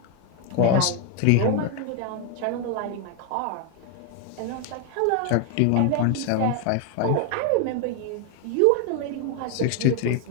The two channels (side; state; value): both; different; correlation 0.01